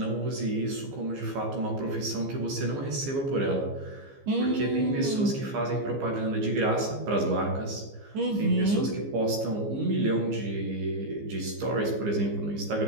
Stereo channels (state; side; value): late; left; 15 ms